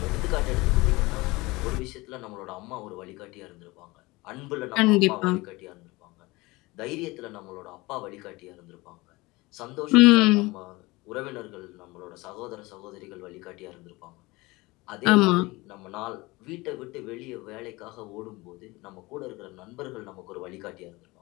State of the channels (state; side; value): quieter; right; 22.3 dB